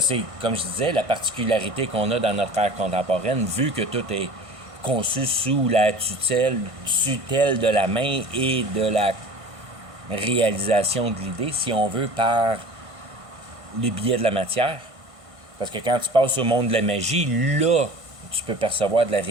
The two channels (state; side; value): late; left; 1.5 ms